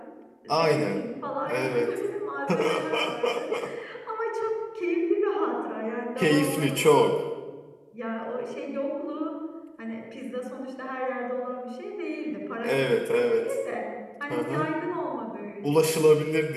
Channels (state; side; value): identical; both; correlation 1.00